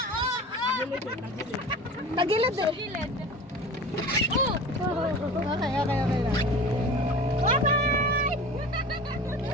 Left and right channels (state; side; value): normal; both; correlation 0.37